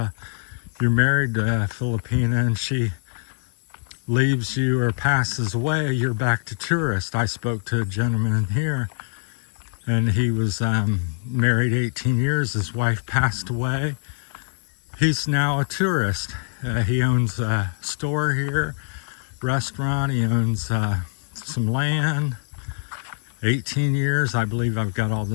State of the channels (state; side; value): silent; right; 60 dB below the other